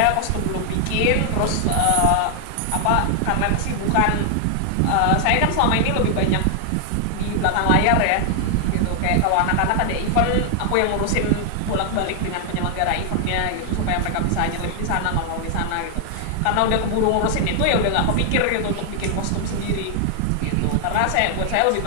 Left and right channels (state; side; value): different; both; correlation 0.00